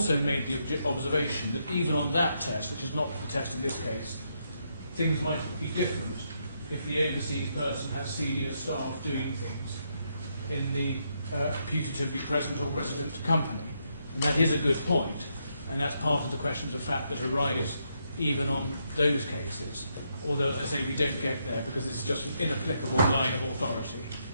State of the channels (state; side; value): inverted; both; correlation -0.78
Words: made the observation that even on that test, which is not the test in this case, things might be different if the overseas person has senior staff doing things in the putatively present or resident company. And that is a good point, and that's part of the questions of fact that arise even on those cases. Although, as I say, we don't get there because it's just an inapplicable line of authority.